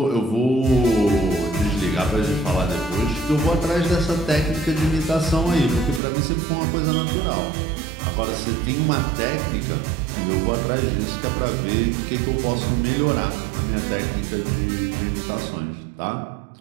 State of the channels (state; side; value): drops out; left; at 6.0 s